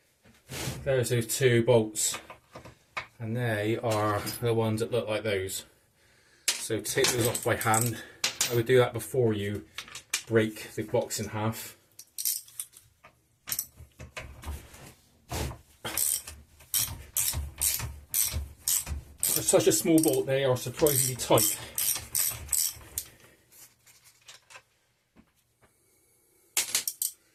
there's those two bolts, and they are the ones that look like those. So take those off by hand. I would do that before you break the box in half. For such a small bolt, they are surprisingly tight.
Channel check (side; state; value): both; identical; correlation 1.00